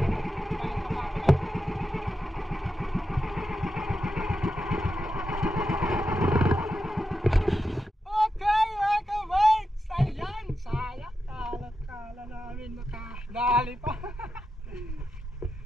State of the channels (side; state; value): both; normal; correlation 0.88